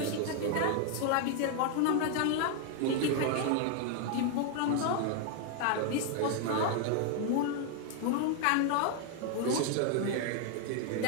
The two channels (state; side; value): different; both; correlation 0.00